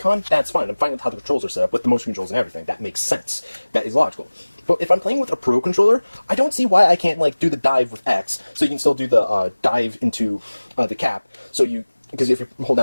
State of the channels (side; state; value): both; inverted; correlation -1.00